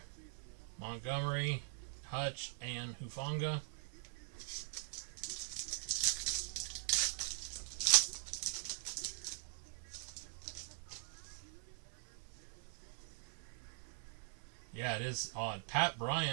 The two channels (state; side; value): silent; left; digital silence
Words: Montgomery, Hutch, and Hufanga. Yeah, it is odd. Pat